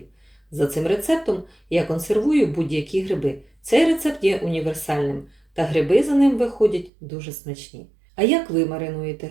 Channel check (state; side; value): drops out; left; at 6.9 s